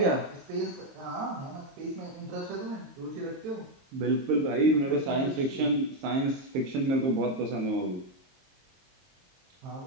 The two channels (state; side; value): late; left; 22 ms